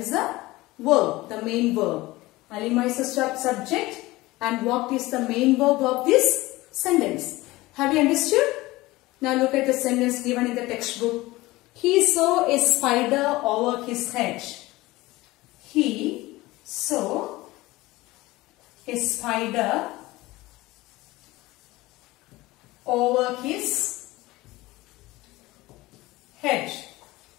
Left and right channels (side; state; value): right; quieter; 19.6 dB